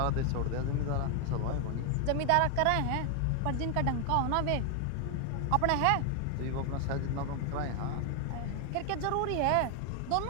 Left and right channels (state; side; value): different; both; correlation 0.00